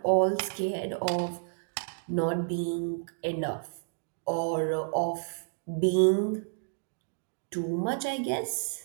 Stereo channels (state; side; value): silent; left; digital silence